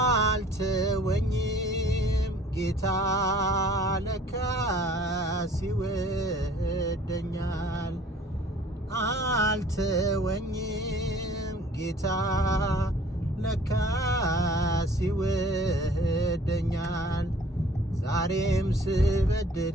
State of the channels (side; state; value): both; normal; correlation 0.53